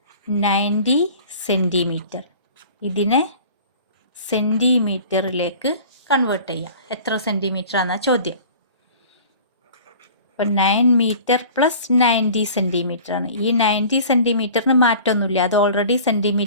90 സെൻറ്റിമീറ്റർ. ഇതിനെ സെൻറ്റിമീറ്ററിലേക്ക് കൺവേർട്ട് ചെയ്യാം. എത്ര സെൻറ്റിമീറ്റർ ആണെന്നാ ചോദ്യം. അപ്പോൾ 9 മീറ്റർ പ്ലസ് 90 സെൻറ്റിമീറ്റർ ആണ്. ഈ 90 സെൻറ്റിമീറ്ററിന് മാറ്റമൊന്നുമില്ല, അത് ഓൾറെഡി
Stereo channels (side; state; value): both; inverted; correlation -0.44